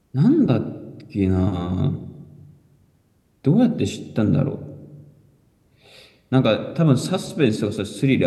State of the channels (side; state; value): both; identical; correlation 1.00